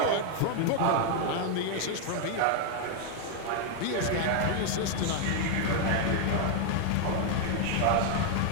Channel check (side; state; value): both; different; correlation 0.00